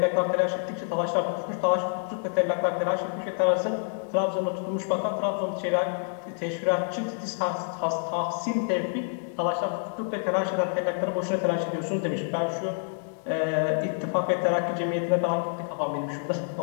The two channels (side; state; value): right; silent; digital silence